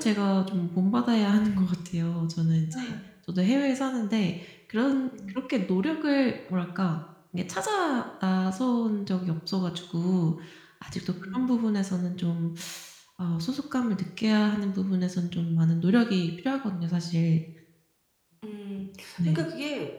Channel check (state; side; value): identical; both; correlation 1.00